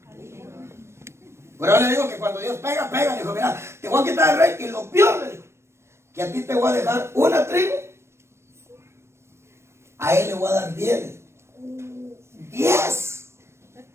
Pero yo le digo que cuando Dios pega, le dijo, mira, te voy a quitar el rey, y lo peor, le dijo, que a ti te voy a dejar una tribu, a él le voy a dar 10. 10.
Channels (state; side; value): late; left; 0.13 ms